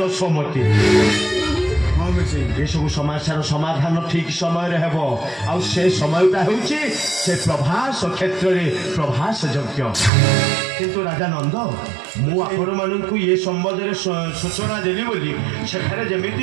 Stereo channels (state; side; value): drops out; left; at 10.1 s